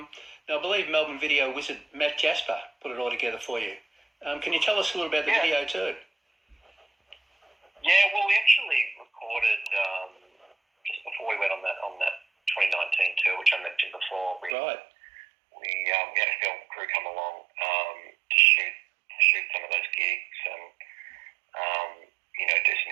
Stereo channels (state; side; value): drops out; left; at 14.6 s